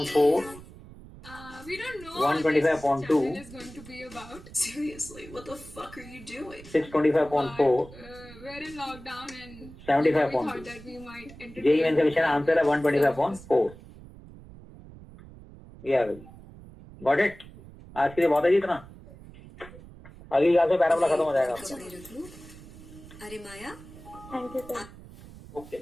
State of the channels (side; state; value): right; noise; rumble, 18 dB below the sound